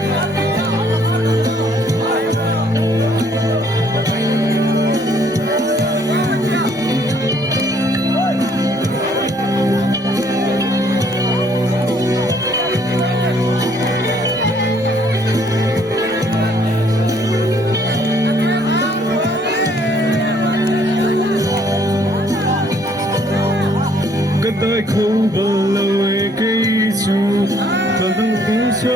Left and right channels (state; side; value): normal; both; correlation 0.64